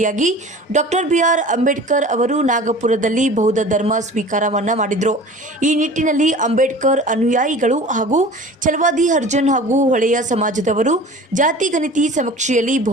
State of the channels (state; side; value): normal; both; correlation 0.41